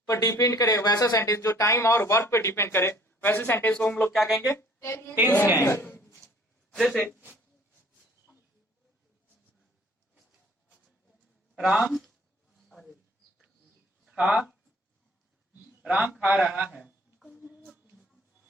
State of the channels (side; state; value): both; normal; correlation 0.55